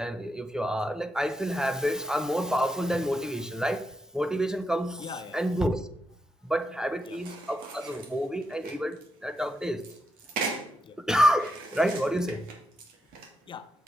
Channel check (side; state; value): both; normal; correlation 0.83